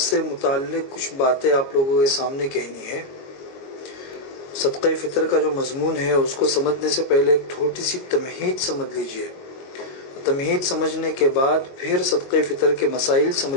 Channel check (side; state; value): right; late; 22 ms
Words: متعلق کچھ باتیں آپ لوگوں کے سامنے کہنی ہے۔ صدقہ فطر کا جو مضمون ہے اس کو سمجھنے سے پہلے ایک چھوٹی سی تمہید سمجھ لیجئے۔ تمہید سمجھنے کے بعد پھر صدقہ فطر کے مسائل